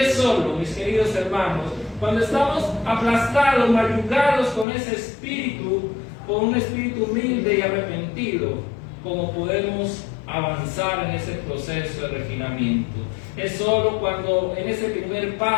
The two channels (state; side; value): drops out; right; at 4.7 s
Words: es solo, mis queridos hermanos, cuando estamos aplastados, mayugados con ese espíritu, con un espíritu humilde y arrepentido, como podemos avanzar en ese proceso de refinamiento. Es solo cuando en ese primer